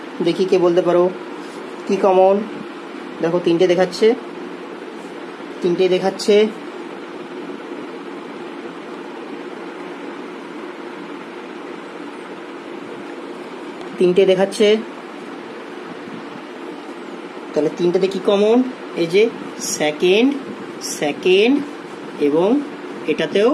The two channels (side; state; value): both; identical; correlation 1.00